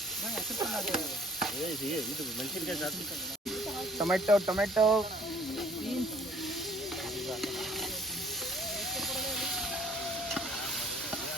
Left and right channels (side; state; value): both; normal; correlation 0.57